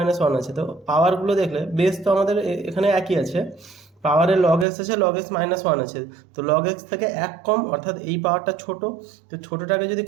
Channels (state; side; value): drops out; left; at 4.7 s